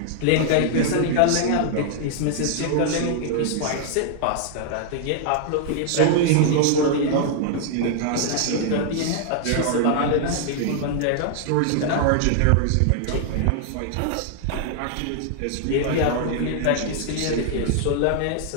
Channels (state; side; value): different; both; correlation 0.00